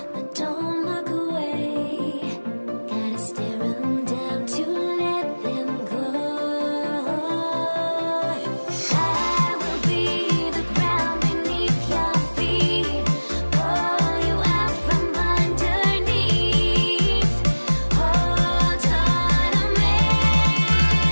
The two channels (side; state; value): both; inverted; correlation -1.00